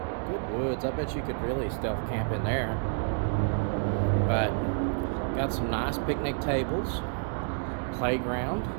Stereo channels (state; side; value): silent; left; 58 dB below the other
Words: woods. I bet you could really stealth camp in there. But got some nice picnic tables, playground,